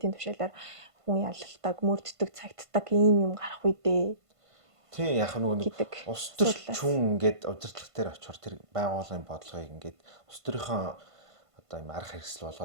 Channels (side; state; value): left; late; 1.5 ms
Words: тушаалаар хүн ялалтаг, мөрддөг, цагддаг ийм юм гарах үедээ. Тийм яг нөгөө улс төрчин ингээд удирдлага дээр очихоор тэр байгууллагын бодлогыг ингээд улс төрийнхөө одоо юм арга хэрэгсэл